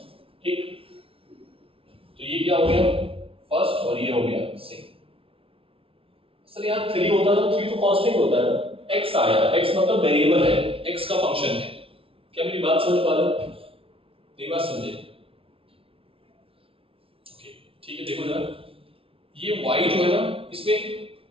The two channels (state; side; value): late; left; 0.26 ms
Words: ठीक। तो ये क्या हो गया, फर्स्ट, और ये हो गया सेकंड। सर यहाँ 3 होता तो 3 तो कांस्टेंट होता है ना, x आया, x मतलब वेरिएबल है, x का फंक्शन है। क्या मेरी बात समझ पा रहे हो? नहीं बात समझे? ओके, ठीक है। देखो जरा, ये y जो है ना, इसमें